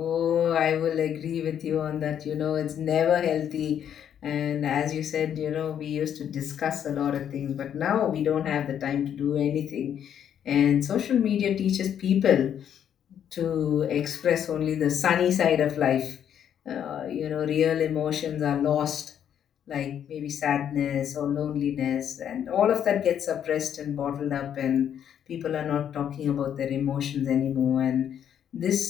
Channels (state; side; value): quieter; right; 9.3 dB